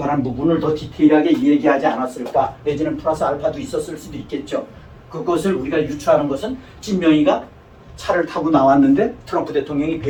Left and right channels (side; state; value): both; identical; correlation 1.00